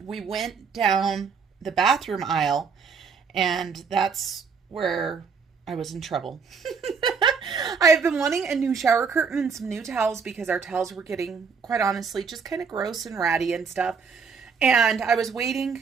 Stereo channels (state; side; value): quieter; left; 5.7 dB